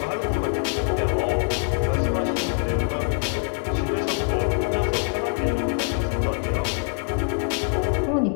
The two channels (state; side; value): silent; right; 63 dB below the other